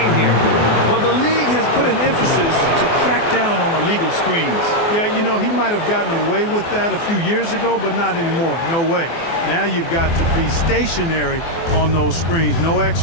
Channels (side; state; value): right; late; 24 ms